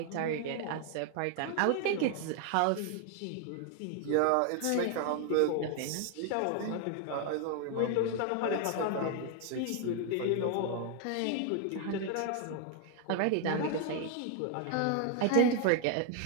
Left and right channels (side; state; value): both; different; correlation 0.00